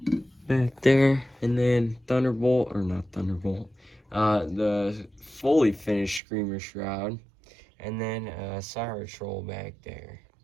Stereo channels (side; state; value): left; drops out; at 6.2 s